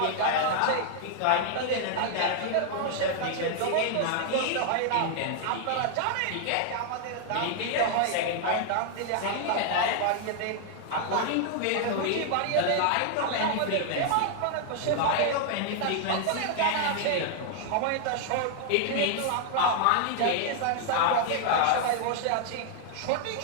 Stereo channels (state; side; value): different; both; correlation 0.00